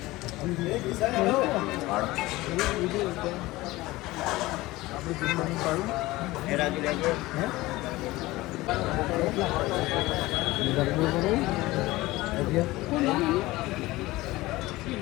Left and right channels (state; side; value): quieter; right; 19.2 dB